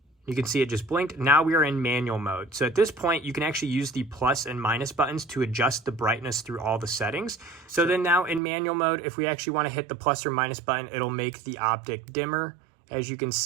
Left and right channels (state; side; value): drops out; left; at 8.4 s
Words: You can see it just blinked. Now we are in manual mode. So at this point, you can actually use the plus and minus buttons to adjust the brightness through all the settings. So then now in manual mode, if we actually want to hit the plus or minus button, it'll make the optic dimmer, as you can